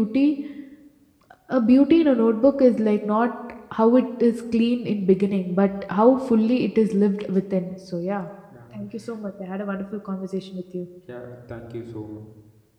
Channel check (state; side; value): identical; both; correlation 1.00